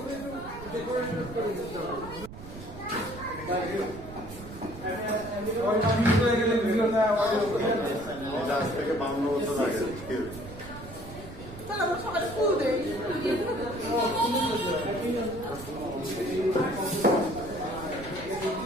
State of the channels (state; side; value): noise; right; rumble, 14 dB below the sound